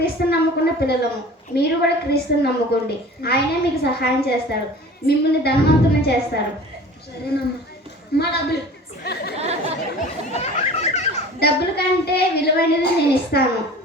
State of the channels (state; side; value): normal; both; correlation 0.42